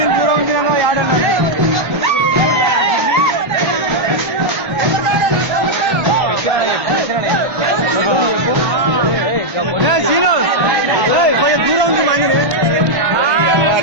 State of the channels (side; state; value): left; late; 1.1 ms